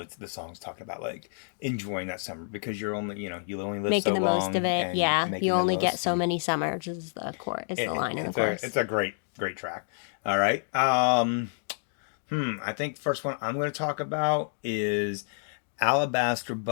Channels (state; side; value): silent; right; digital silence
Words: the song's talking about like enjoying that summer because you're only, you only live making so the long. Most of it, yeah. Making You the only most. get so many summers is the line in the chorus. It's a great track. All right. I think the first one I'm going to talk about is Alabaster